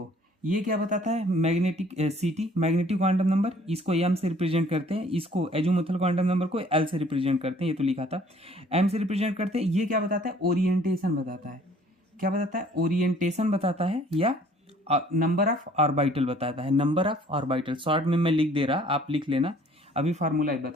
ये क्या बताता है, मैग्नेटिक सीटी, मैग्नेटिक क्वांटम नंबर, इसको एम से रिप्रेजेंट करते हैं, इसको एजोमुथल क्वांटम नंबर को एल से रिप्रेजेंट करते हैं, ये तो लिखा था, एम से रिप्रेजेंट करते हैं। ये क्या बताता है, ओरिएंटेशन बताता है। क्या बताता है, ओरिएंटेशन बताता है, या नंबर ऑफ ऑर्बिटल बताता है, नंबर ऑफ ऑर्बिटल। शॉर्ट में मैं लिख दे रहा, आप लिख लेना, अभी फार्मूला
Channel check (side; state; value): both; normal; correlation 0.56